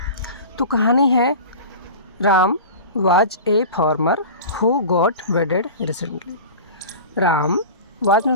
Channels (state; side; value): inverted; both; correlation -0.34